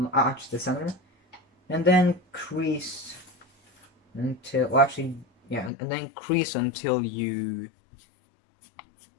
arch the center, and then crease until, well, actually, yeah, and then crease until you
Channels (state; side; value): drops out; right; at 5.7 s